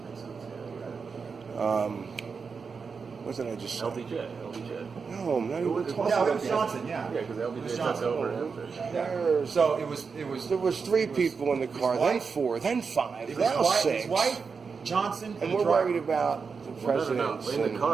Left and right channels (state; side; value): quieter; left; 5.3 dB